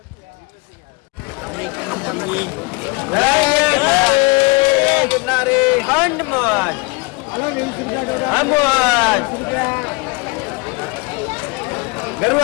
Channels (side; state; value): right; quieter; 27.3 dB